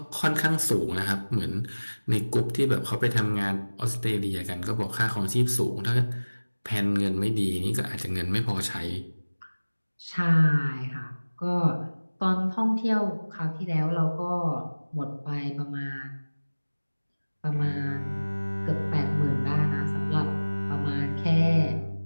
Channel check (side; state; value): both; inverted; correlation -1.00